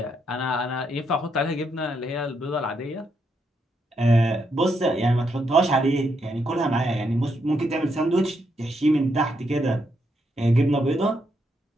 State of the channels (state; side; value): normal; both; correlation 0.78